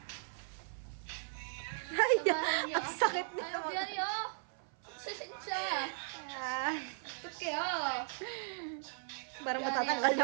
Ay, ang sakit nito. Ano yan yun? Sasensya. Ah, Tuk kaya. para matatanggal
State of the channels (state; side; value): silent; left; 53 dB below the other